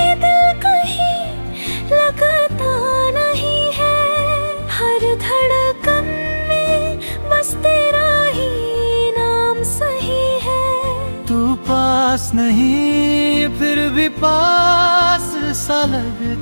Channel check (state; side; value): inverted; both; correlation -1.00